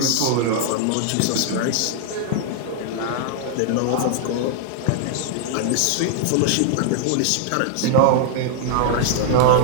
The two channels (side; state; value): both; different; correlation 0.00